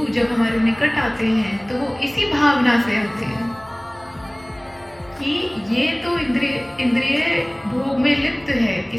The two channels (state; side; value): noise; left; hum, 29 dB below the sound